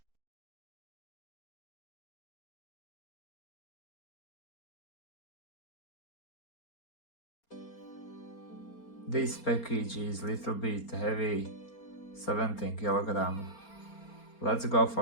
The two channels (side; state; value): right; late; 4.3 ms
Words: This package is little bit heavy, 17 kg. Let's go